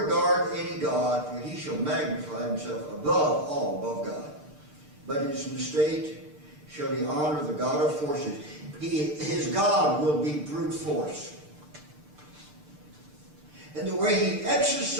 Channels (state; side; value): late; left; 6.7 ms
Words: regard any God, for he shall magnify himself above all, above God. But in his estate shall he honor the God of forces. His God will be brute force. And the way he